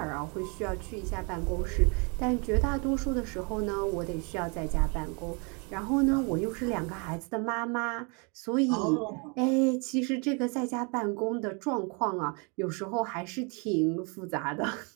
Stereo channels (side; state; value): left; quieter; 33.7 dB